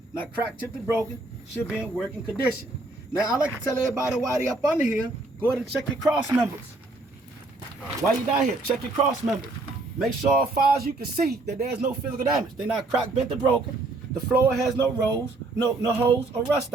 Now cracked, chipped, and broken, should be in working condition. Now I like to tell everybody while they up under here, go ahead and check your cross members. While you down here, check your cross members. Make sure as far as you can see that there's no physical damage. They're not cracked, bent, or broken. The floor has no rolls, no holes or rust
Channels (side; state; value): left; quieter; 3.0 dB